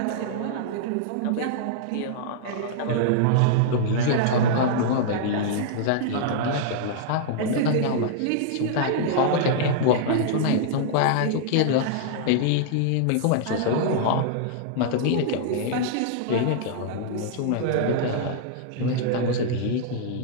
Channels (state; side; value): different; both; correlation -0.01